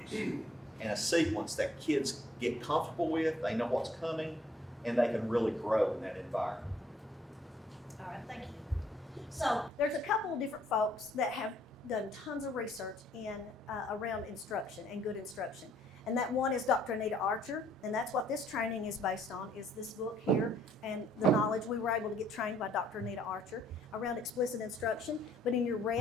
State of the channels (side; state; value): both; normal; correlation 0.65